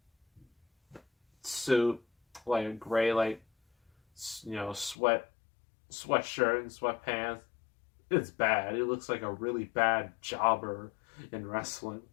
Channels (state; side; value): drops out; right; at 5.0 s